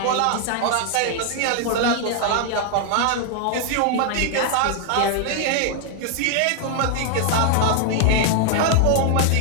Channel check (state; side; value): different; both; correlation 0.00